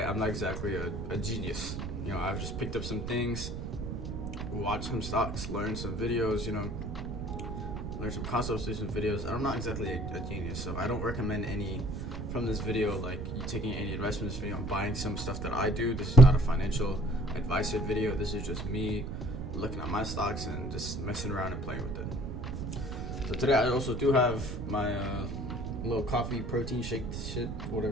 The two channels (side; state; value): right; noise; rumble, 5 dB below the sound